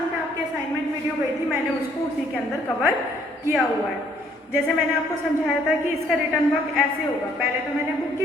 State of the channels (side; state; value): both; normal; correlation 0.64